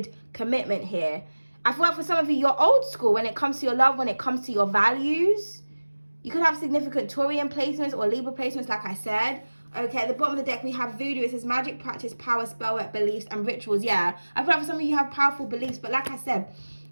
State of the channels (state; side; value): inverted; both; correlation -1.00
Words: commitment here. I feel like for some of you, you're old school when it comes to your love, when it comes to your values. You could have significant Taurian placements or Libra placements, like I said. Okay, at the bottom of the deck, we have voodoo. It says magic, practice, power, spell work, beliefs, and rituals. Yeah, I feel like for some of you have powerful beliefs, but like I said,